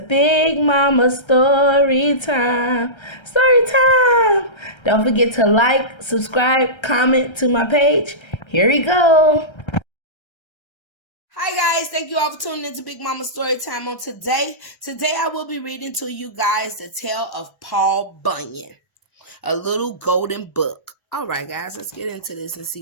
Mama Story Time. Story Time! Don't forget to like, subscribe, comment to my page. Here we go. Hi guys, thank you all for tuning into Big Mama Story Time on today. Today I will be reading to you guys the tale of Paul Bunyan, a little golden book. All right guys, let's get into this and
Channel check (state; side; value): late; right; 1.3 ms